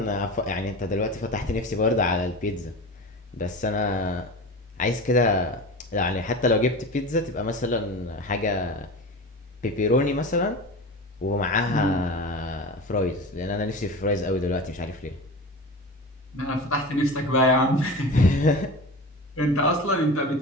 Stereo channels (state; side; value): normal; both; correlation 0.30